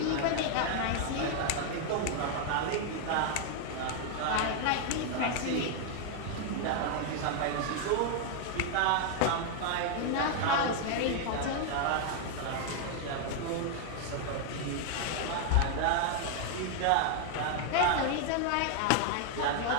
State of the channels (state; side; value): different; both; correlation 0.00